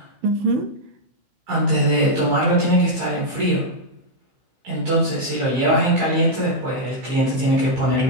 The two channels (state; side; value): late; left; 15 ms